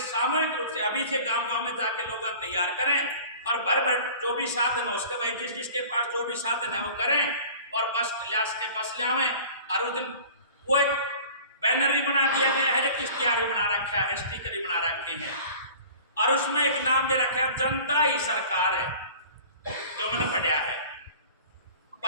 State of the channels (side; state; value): both; inverted; correlation -0.43